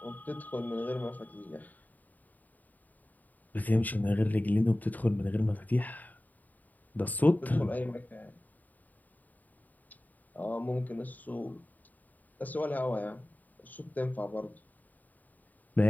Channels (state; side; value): late; right; 0.082 ms